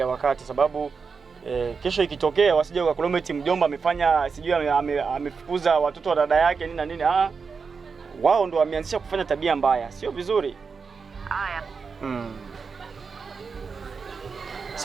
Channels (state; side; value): quieter; left; 5.2 dB